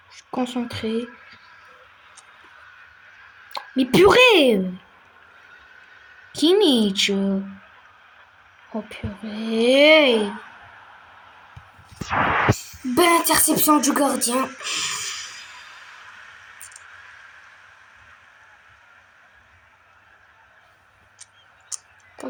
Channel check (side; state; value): both; identical; correlation 1.00